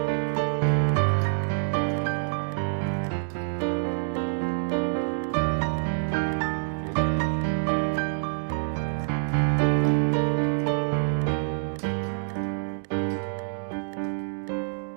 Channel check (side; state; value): left; silent; digital silence